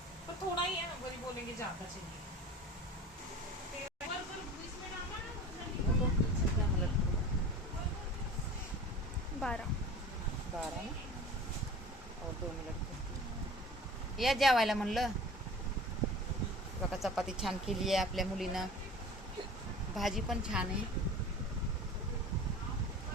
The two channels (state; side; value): normal; both; correlation 0.40